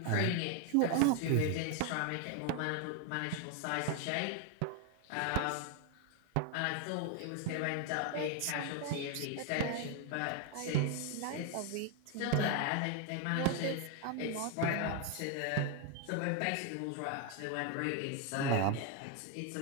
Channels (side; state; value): both; different; correlation 0.01